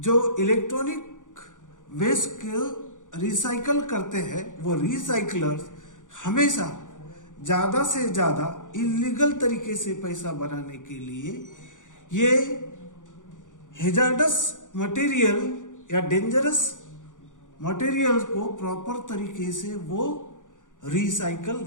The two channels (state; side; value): late; right; 0.87 ms